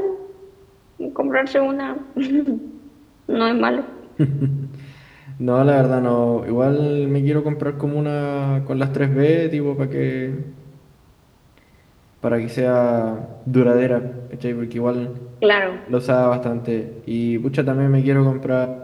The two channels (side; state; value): both; identical; correlation 1.00